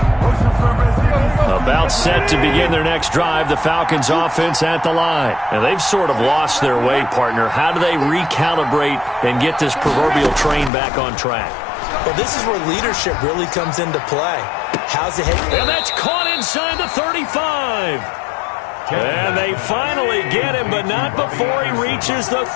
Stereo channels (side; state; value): right; drops out; at 10.7 s